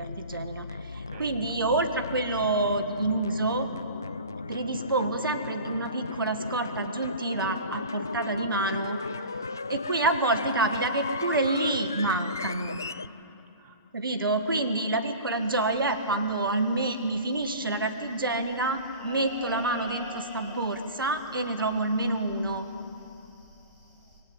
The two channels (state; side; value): inverted; both; correlation -0.39